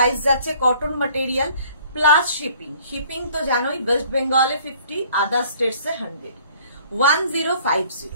যাচ্ছে, cotton material plus shipping. Shipping তো জানোই, ওয়েস্ট বেঙ্গলে 50, আদার স্টেটসে 100। 1050।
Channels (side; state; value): both; inverted; correlation -0.56